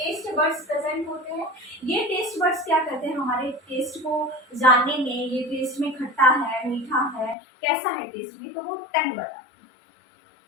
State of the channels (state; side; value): drops out; right; at 7.4 s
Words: बर्ड्स प्रेजेंट होते हैं। ये टेस्ट बर्ड्स क्या करते हैं, हमारे टेस्ट को जानने में, ये टेस्ट में खट्टा है, मीठा है, कैसा है टेस्ट में, तो वो टंग बताते हैं।